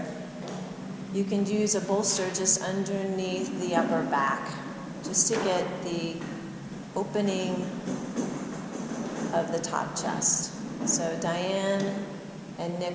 you can use a bolster just underneath the upper back, just to get the opening of the top chest. So Diane and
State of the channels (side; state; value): both; identical; correlation 1.00